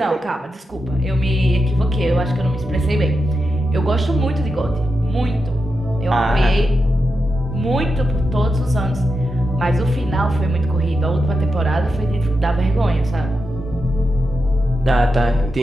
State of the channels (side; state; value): both; normal; correlation 0.88